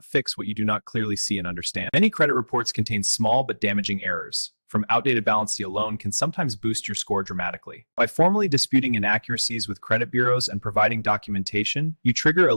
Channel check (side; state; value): both; inverted; correlation -1.00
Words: fix what you do not clearly see and understand. Many credit reports contain small but damaging errors. From outdated balance alone can sometimes boost your score dramatically. By formally disputing inaccuracies with credit bureaus and providing documentation, you trigger a